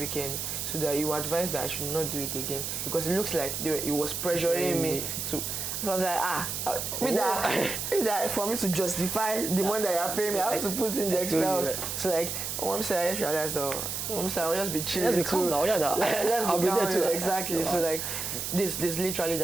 so that you advise that I should not do it again because it looks like he was pressuring me to. So I was like, that for me to justify the money that you're paying me, I have to put in the extra. So like, I just realized, I'll just be chilling. Let's be calm now. Let's be calm too. Exactly. So like, this literally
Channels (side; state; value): right; noise; hiss, 4 dB below the sound